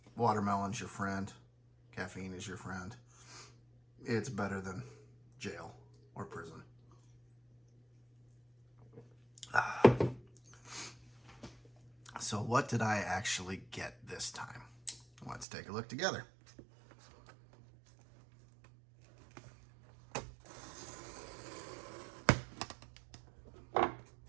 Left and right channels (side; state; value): left; drops out; at 15.5 s